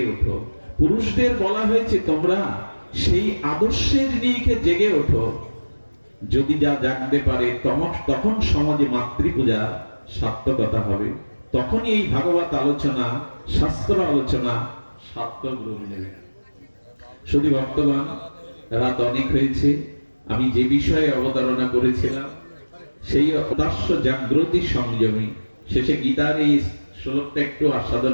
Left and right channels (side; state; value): both; inverted; correlation -1.00